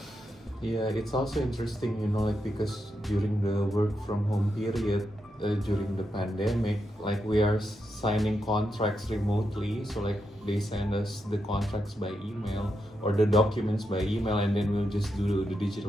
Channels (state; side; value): normal; both; correlation 0.84